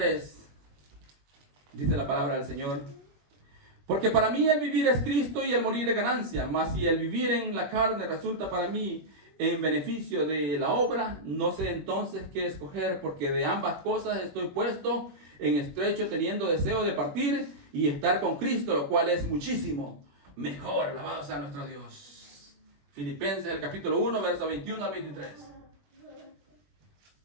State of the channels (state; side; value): late; left; 21 ms